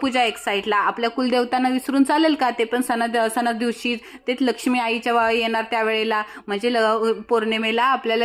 एक साईडला. आपल्या कुलदेवतांना विसरून चालेल का? ते पण सणा दिवशी ते लक्ष्मी आईच्या येणार त्यावेळेला, म्हणजे पौर्णिमेला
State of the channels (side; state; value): both; identical; correlation 1.00